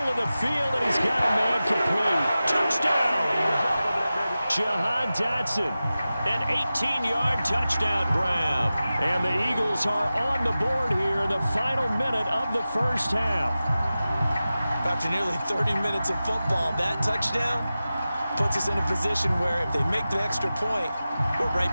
of the field, and he's got a man complete. Touchdown! Jahan Dotson, an 18-yard touchdown grab. And the Eagles are on the board here in the final minute of the 1st half. After nearly 30 minutes of football, that touchdown puts us in a position where if they make the extra point, we're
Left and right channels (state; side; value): inverted; both; correlation -0.95